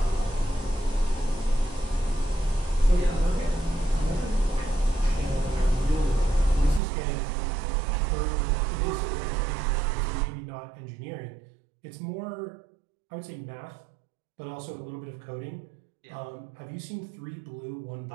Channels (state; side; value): drops out; left; at 6.8 s